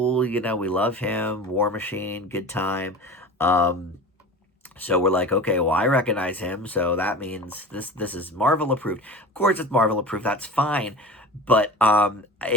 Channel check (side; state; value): both; normal; correlation 0.35